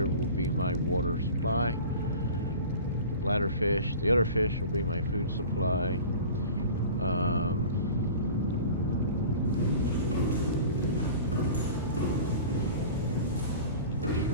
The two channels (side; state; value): both; inverted; correlation -0.40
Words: will be my water supply. The bladder fish, the other fish will be my food supply.